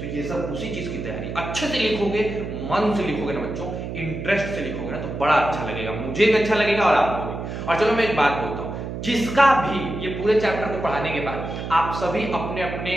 ये सब उसी चीज की तैयारी। अच्छे से लिखोगे, मन से लिखोगे ना बच्चों, इंटरेस्ट से लिखोगे ना, तो बड़ा अच्छा लगेगा, मुझे भी अच्छा लगेगा और आपको भी। और चलो मैं एक बात बोलता हूँ, जिसका भी ये पूरे चैप्टर को पढ़ाने के बाद आप सभी अपने अपने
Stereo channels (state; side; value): noise; right; hum, 6 dB below the sound